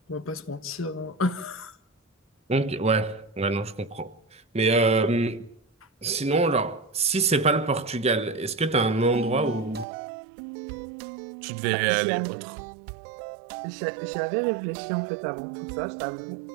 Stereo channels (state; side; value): drops out; left; at 9.9 s